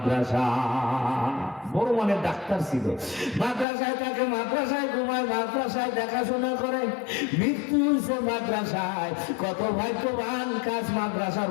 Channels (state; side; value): drops out; right; at 3.7 s